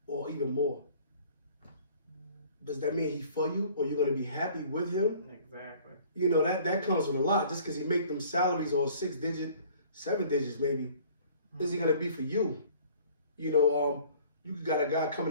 or even more, does that mean he's for you, or you're going to be happy with him? Exactly. You know, that comes with a lot. Just because he make them salaries or 6 digit, 7 digits maybe, is he going to be for you? You know, you got a guy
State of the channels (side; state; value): both; inverted; correlation -0.52